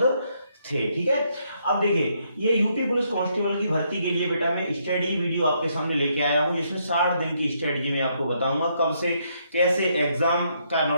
थे। ठीक है, अब देखिए ये यूपी पुलिस कांस्टेबल की भर्ती के लिए बेटा मैं स्टडी वीडियो आपके सामने लेके आया हूँ, जिसमें 60 दिन की स्ट्रेटजी में आपको बताऊंगा कब से कैसे एग्जाम का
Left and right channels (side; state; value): both; inverted; correlation -0.74